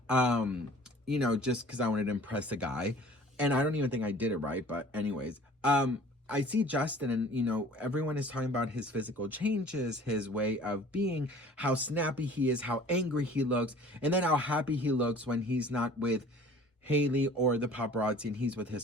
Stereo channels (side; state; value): both; normal; correlation 0.47